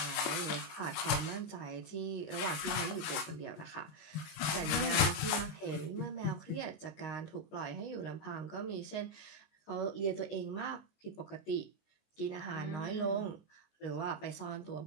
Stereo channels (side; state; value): right; late; 19 ms